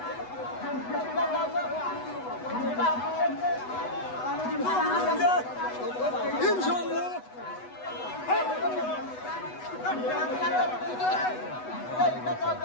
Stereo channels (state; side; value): late; right; 8.1 ms